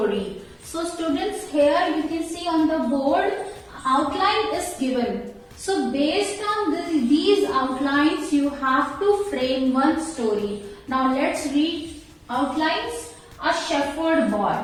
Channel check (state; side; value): identical; both; correlation 1.00